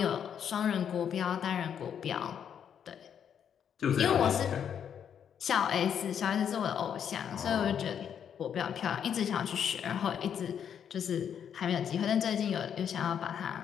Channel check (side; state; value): right; quieter; 8.4 dB